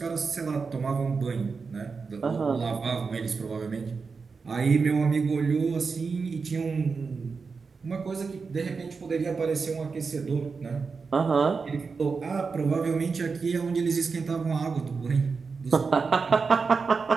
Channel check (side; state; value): left; quieter; 4.9 dB